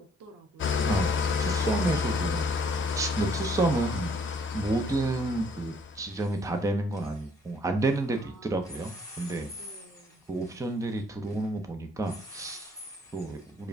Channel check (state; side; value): normal; both; correlation 0.63